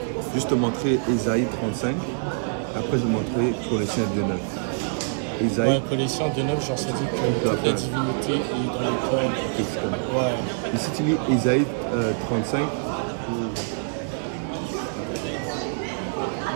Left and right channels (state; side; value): silent; left; digital silence